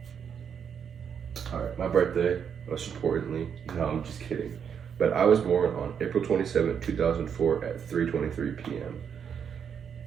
All right, my birthday, most importantly. No, I'm just kidding. But I was born on April 27th, 2004 at 3:23 p.m.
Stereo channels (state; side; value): quieter; left; 7.5 dB